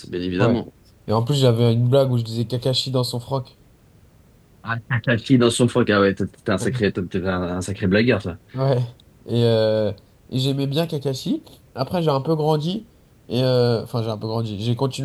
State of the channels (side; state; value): both; identical; correlation 1.00